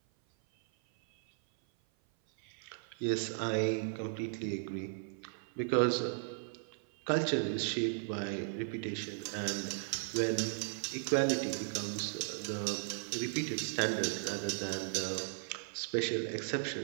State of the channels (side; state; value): left; silent; 54 dB below the other